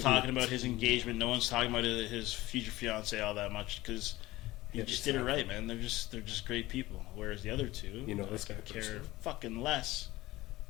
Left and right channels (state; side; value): quieter; right; 18.2 dB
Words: talking he- about his engagement. No one's talking about his future fiance all that much because he Yeah, just did it right, man. They're just great people. Whereas the other two, You know I this could guy care personally. fucking less